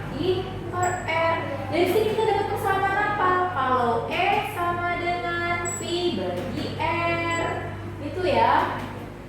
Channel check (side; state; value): both; identical; correlation 1.00